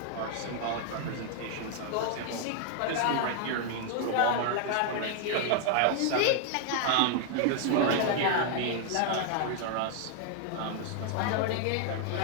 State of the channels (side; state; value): both; different; correlation 0.00